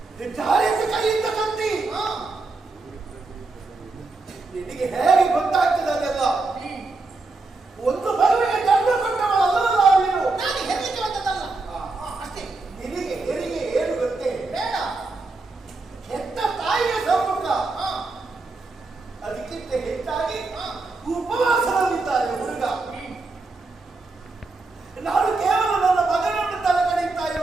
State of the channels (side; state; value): left; quieter; 3.6 dB